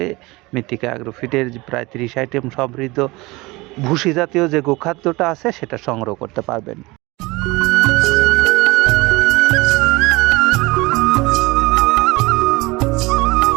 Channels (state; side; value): quieter; left; 22.8 dB